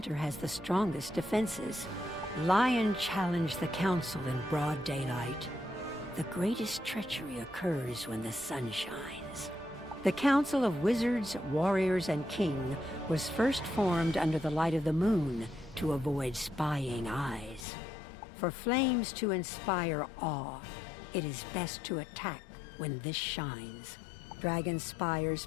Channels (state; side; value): drops out; right; at 17.7 s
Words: has the strongest defenses. Lion challenged the council in broad daylight. The greatest treachery occurs when the sun shines. The Council of Wizards, Warriors, and King was first formed under the light of the moon to avoid spying eyes. For flames to inspire awe, it is best to attack when this shines.